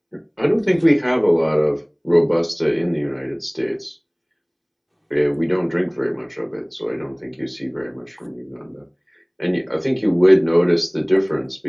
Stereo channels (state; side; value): identical; both; correlation 1.00